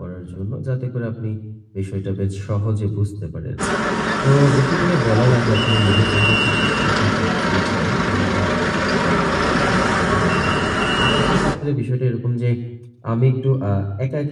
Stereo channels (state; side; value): identical; both; correlation 1.00